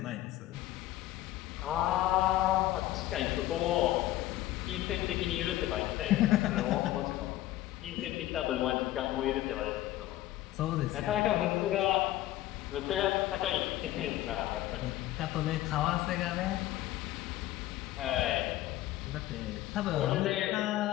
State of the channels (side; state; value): right; quieter; 15.1 dB